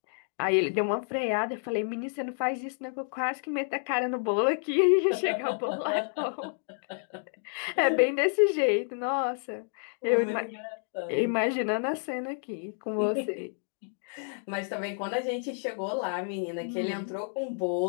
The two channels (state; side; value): silent; right; 58 dB below the other